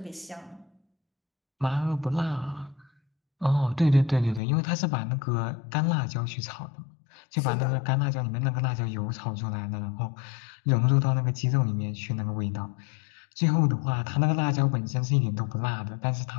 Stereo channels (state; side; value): drops out; right; at 4.4 s